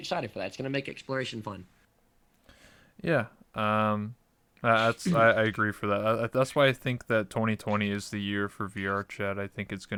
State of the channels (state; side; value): identical; both; correlation 1.00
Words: for that. It's going to make exploration fun. Yeah. I agree for that. That's why I think that 2020 is the year for VR chat. I think it's